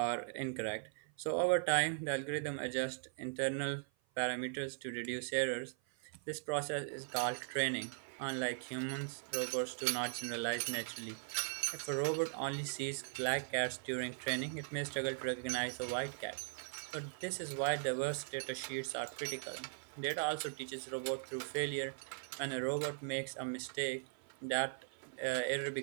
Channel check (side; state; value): left; silent; 51 dB below the other